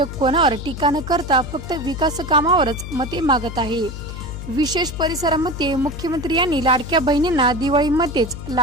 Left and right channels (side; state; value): left; noise; hum, 9 dB below the sound